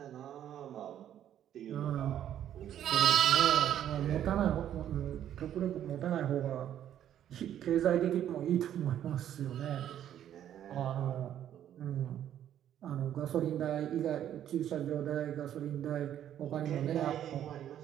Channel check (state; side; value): quieter; left; 10.7 dB